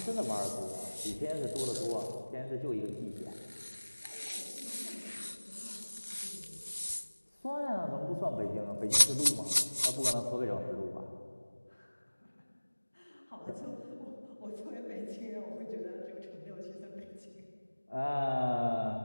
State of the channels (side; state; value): both; inverted; correlation -1.00